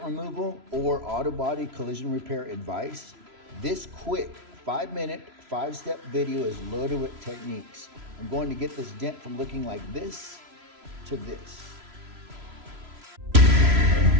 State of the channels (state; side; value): late; left; 3.0 ms